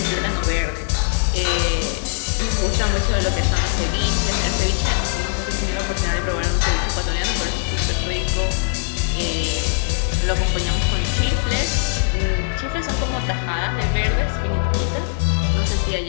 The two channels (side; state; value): right; quieter; 36.5 dB